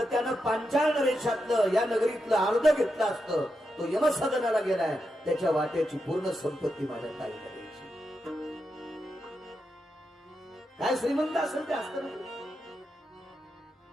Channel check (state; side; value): normal; both; correlation 0.86